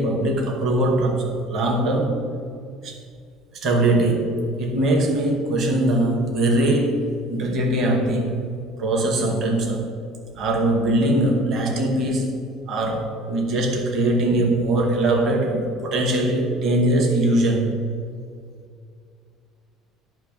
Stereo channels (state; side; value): normal; both; correlation 0.45